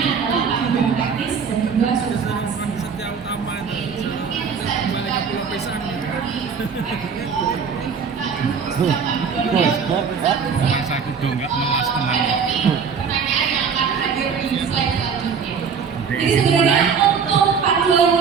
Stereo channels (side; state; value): left; quieter; 6.2 dB